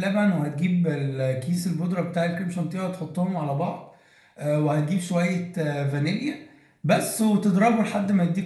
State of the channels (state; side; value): identical; both; correlation 1.00